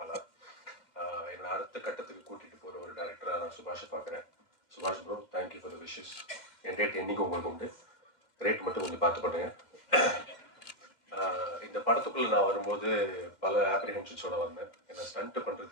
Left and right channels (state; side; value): late; right; 2.1 ms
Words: ஆனால் என்னை அடுத்த கட்டத்துக்கு கூட்டிட்டு போற ஒரு டைரக்டரா நான் சுபாஷை பார்க்குறேன். சுபாஷ் bro, thank you for the wishes. N rate என்னைக்கும் உங்களுக்கு உண்டு. ரேட் மட்டும் கொஞ்சம் பார்த்து பண்ணுங்க. இந்த படத்துக்குள்ள நான் வரும்போது பல ஆப்ரிஹென்ஷன்ஸோட வந்தேன். ஏன்னா ஸ்டண்ட்